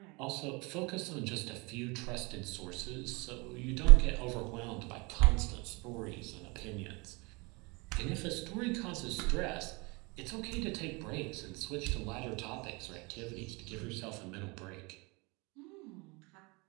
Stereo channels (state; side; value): quieter; left; 27.7 dB